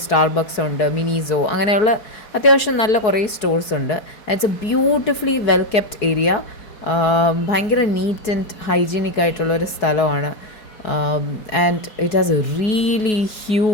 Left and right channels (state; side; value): late; right; 4.7 ms